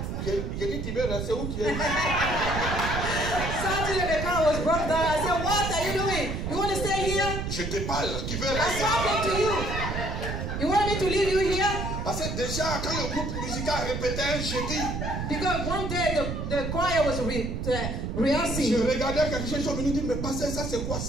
J'ai dit, tu veux rester où tu es? Saturday the car was broke down. I said, what are you doing? You want to stay here? Je te parle, tu veux I'm rester? talking to you. You want me to leave you here? Parce que déjà, quand le groupe musical répétait un jeudi, because one day the choir was rehearsing. Je regardais quelque chose, ils sont venus dire, mais pasteur, ça c'est quoi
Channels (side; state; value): right; noise; rumble, 3 dB below the sound